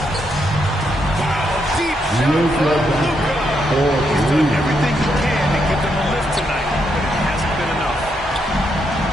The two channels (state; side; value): normal; both; correlation 0.79